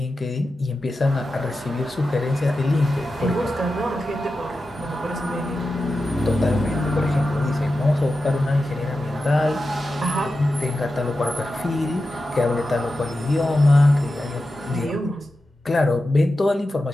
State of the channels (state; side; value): normal; both; correlation 0.92